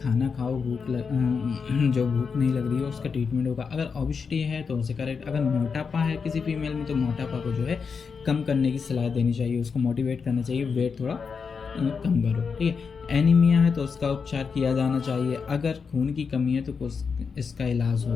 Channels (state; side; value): quieter; right; 5.6 dB